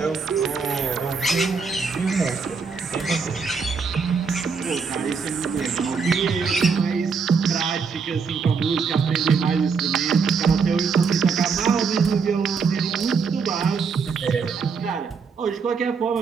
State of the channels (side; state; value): left; quieter; 5.4 dB